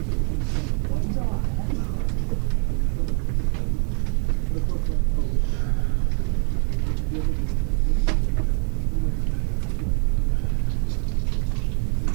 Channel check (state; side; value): quieter; left; 39.0 dB